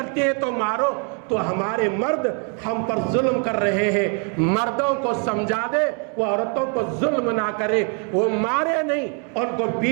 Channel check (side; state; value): left; quieter; 39.5 dB